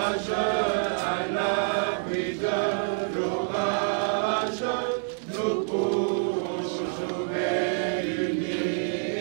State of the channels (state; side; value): silent; left; digital silence